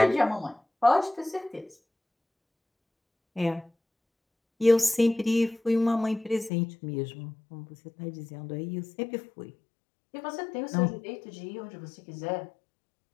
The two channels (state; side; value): drops out; right; at 6.5 s